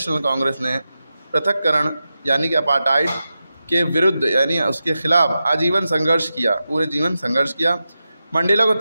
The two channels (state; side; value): inverted; both; correlation -0.91